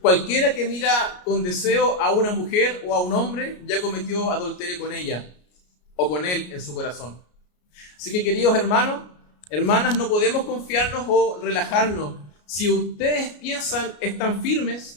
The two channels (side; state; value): right; late; 33 ms